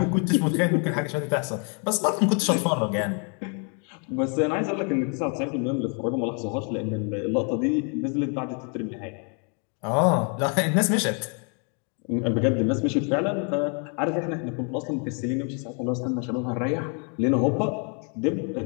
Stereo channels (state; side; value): quieter; right; 38.7 dB